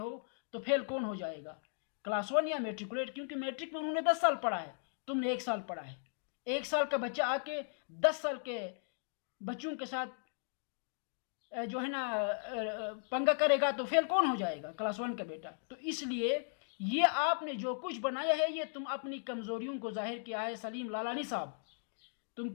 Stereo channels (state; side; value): silent; right; digital silence